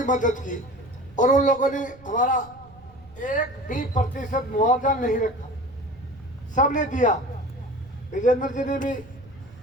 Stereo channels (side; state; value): right; noise; rumble, 23 dB below the sound